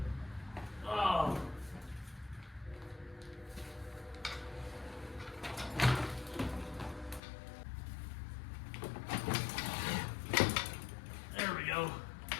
Oh. There we go.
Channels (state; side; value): drops out; right; at 7.2 s